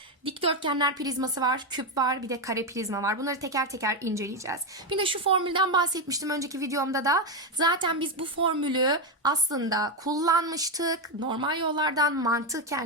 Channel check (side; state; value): both; normal; correlation 0.08